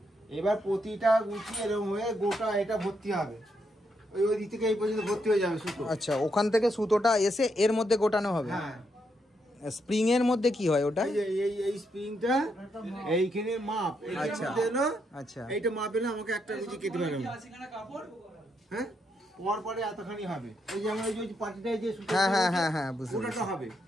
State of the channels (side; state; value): both; normal; correlation 0.79